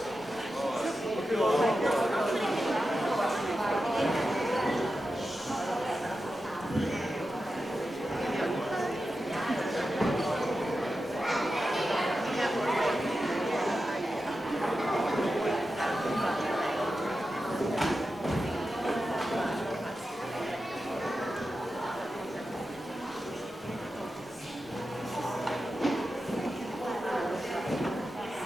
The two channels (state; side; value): normal; both; correlation 0.91